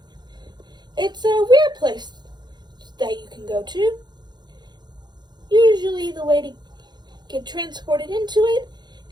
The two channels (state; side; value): late; left; 0.21 ms